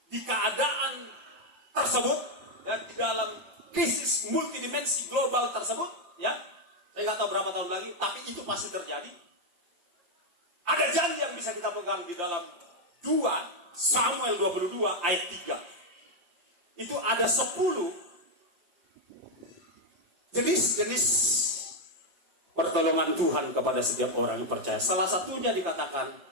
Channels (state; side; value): late; left; 5.8 ms